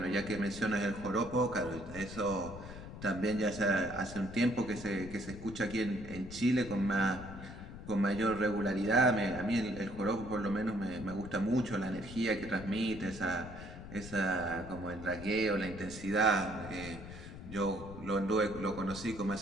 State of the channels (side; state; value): left; noise; rumble, 12 dB below the sound